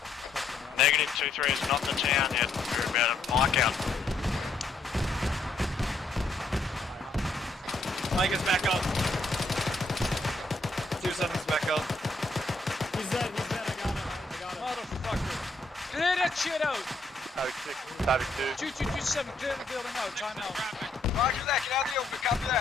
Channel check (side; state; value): right; quieter; 3.3 dB